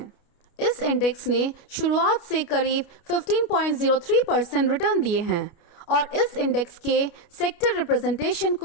इस इंडेक्स ने शुरुआत से करीब 15.03% रिटर्न दिए हैं, और इस इंडेक्स के सेक्टर रिप्रेजेंटेशन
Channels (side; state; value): right; late; 29 ms